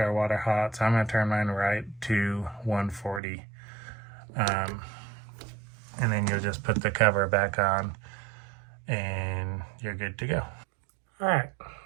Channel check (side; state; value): left; drops out; at 3.2 s